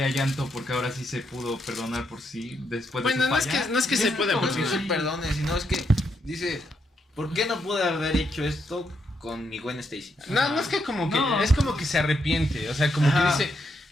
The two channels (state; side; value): normal; both; correlation 0.79